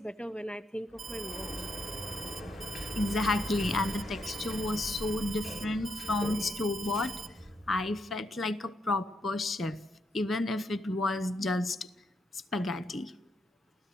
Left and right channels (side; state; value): both; normal; correlation 0.79